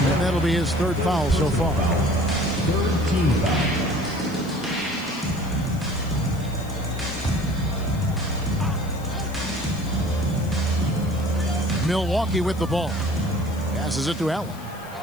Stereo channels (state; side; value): noise; left; hiss, 21 dB below the sound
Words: that'll be his third foul so far. Third team foul. Milwaukee with the ball. Passes it to Allen.